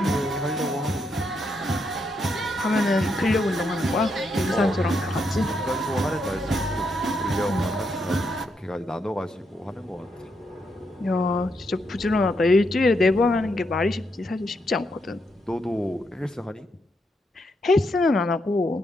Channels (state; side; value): normal; both; correlation 0.80